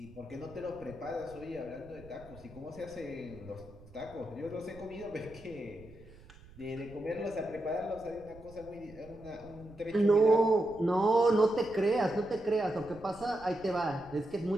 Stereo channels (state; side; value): noise; right; rumble, 21 dB below the sound